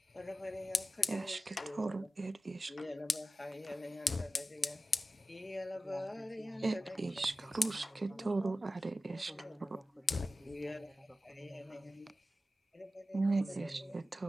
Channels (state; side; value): normal; both; correlation 0.94